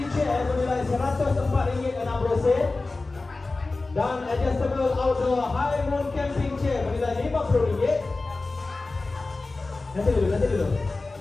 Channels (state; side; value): quieter; right; 3.4 dB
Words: chair bernilai RM104.60 dan adjustable outdoor high moon camping chair bernilai RM50. Nanti dulu.